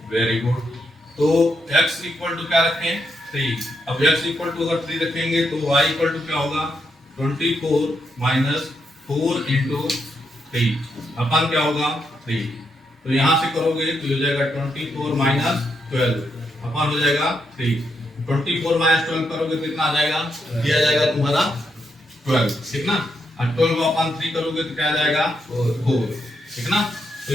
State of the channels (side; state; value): both; normal; correlation 0.80